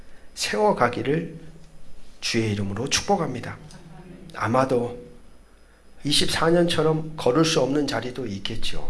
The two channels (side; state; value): both; identical; correlation 1.00